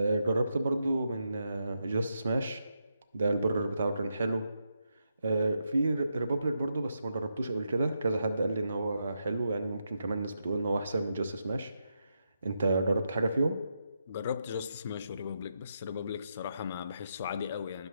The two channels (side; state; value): both; inverted; correlation -0.83